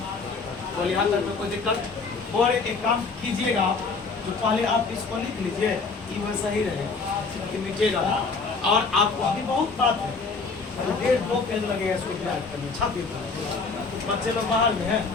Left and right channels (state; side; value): quieter; right; 4.4 dB